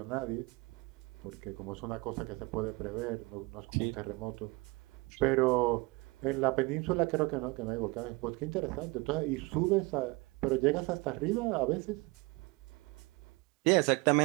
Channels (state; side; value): quieter; left; 25.7 dB